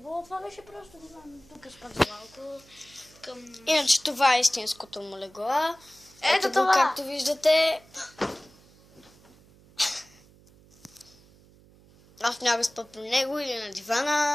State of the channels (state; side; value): noise; right; hum, 27 dB below the sound